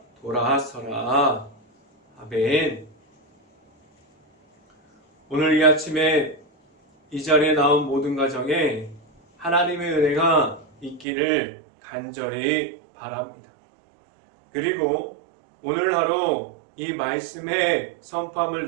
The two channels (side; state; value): left; drops out; at 11.1 s